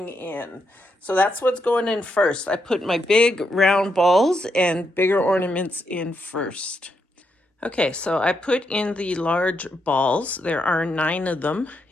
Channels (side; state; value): both; normal; correlation 0.80